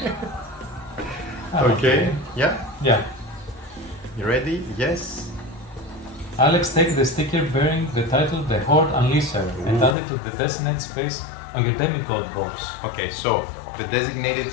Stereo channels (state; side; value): drops out; right; at 10.0 s